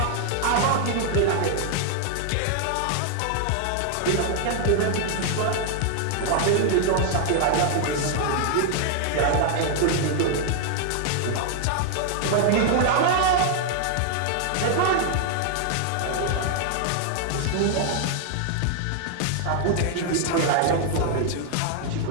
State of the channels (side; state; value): both; different; correlation 0.00